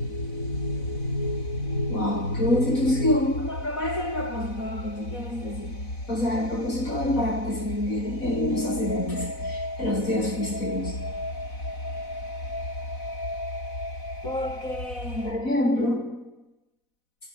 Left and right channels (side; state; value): right; late; 4.0 ms